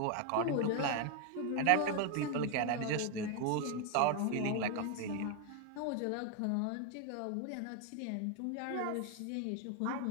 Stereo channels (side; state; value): both; different; correlation 0.01